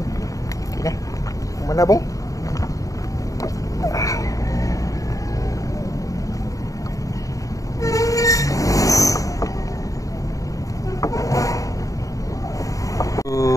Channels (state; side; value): late; right; 0.16 ms